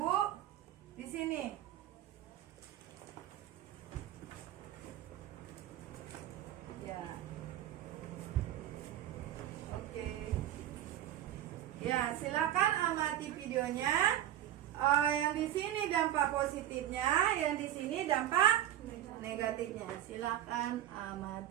Bu. Di sini. Ya. Oke. Ya, silakan amati videonya. Yang di sini dampak positifnya, yang di sini dampak negatifnya. Silakan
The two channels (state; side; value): quieter; left; 12.3 dB